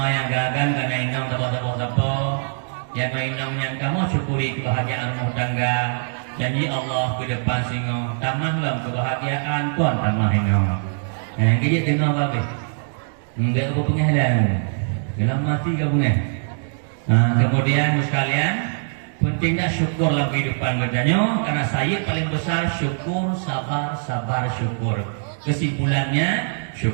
yang agak-agak karena inyong apa yang mainam yang kamu syukuri kebahagiaan rumah tangga janji Allah ke depan singo tamahlah kebahagiaan tuan tamah ingo yang kejap tengok apa enggak apa penghalang dalam mati ke bunga. Kemudian sekalian pentingnya syukur dalam kehidupan kerjanya karena saya paling besar syukur sabar syukur kesimpulannya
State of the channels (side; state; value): left; silent; digital silence